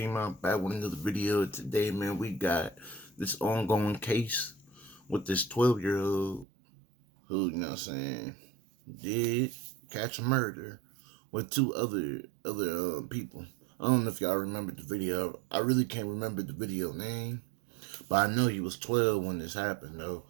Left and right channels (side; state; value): left; drops out; at 6.5 s